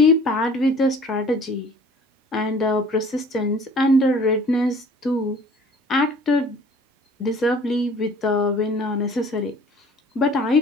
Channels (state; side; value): normal; both; correlation 0.50